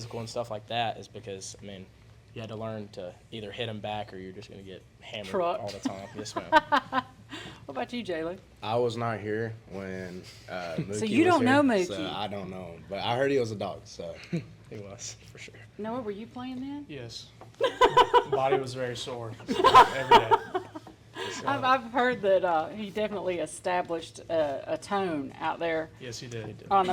and stuff like that is because, you had to learn to either hit him back or you're just going to get hammered all the time. Yes, ma'am. What about you, Jaylee? I was not here when Mookie So you don't know Mookie? So I don't know him, but I heard he was a dog, so he was, for sure. Noah, were you playing then? Yes. Body was very sore every day. I've heard that he definitely established a tone out there. Yes, he did. On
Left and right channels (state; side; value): identical; both; correlation 1.00